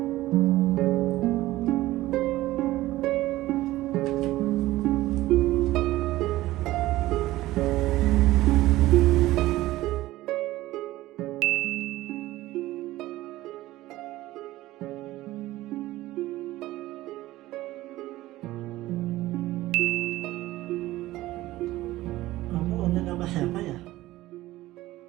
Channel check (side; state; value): left; quieter; 16.8 dB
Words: Kamu online sama siapa ya?